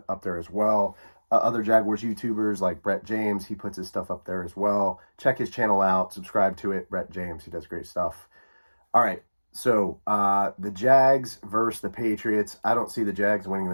up there as well. Other Jaguars YouTubers like Brett James, he puts his stuff up there as well. Check his channel out, subscribe to it. Brett James, he does great stuff. All right, so the Jags versus the Patriots. I don't see the Jags winning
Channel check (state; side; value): inverted; both; correlation -1.00